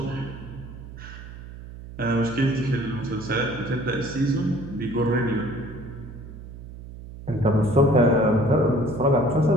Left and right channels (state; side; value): noise; right; hum, 14 dB below the sound